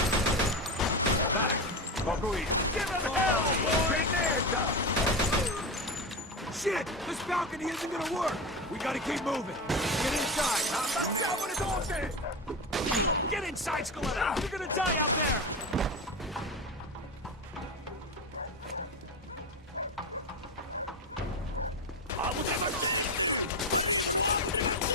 Back! Give him hell, boy! Shit! This balcony isn't gonna work! We gotta keep moving! Get inside! Get inside, Scaletta! You're gonna die out there!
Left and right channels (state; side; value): normal; both; correlation 0.19